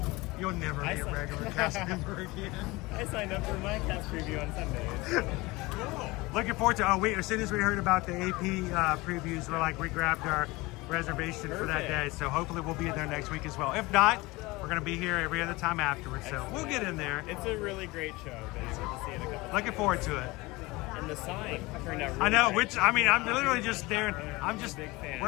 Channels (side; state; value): right; quieter; 22.3 dB